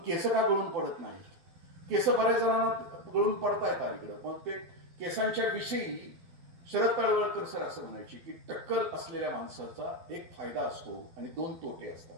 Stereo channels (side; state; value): left; late; 12 ms